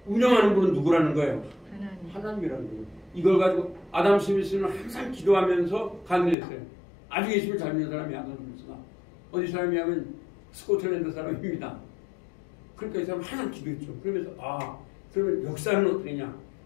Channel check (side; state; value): right; drops out; at 6.4 s